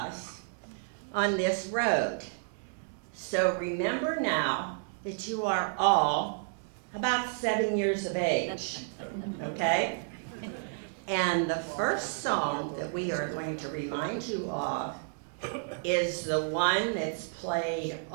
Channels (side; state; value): left; silent; digital silence